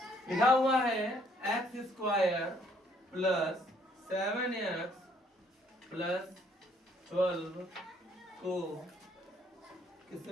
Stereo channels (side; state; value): both; normal; correlation 0.65